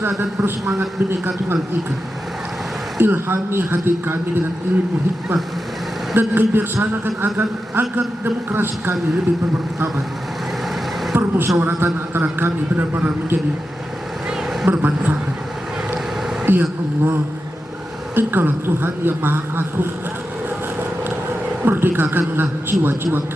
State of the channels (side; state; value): both; normal; correlation 0.90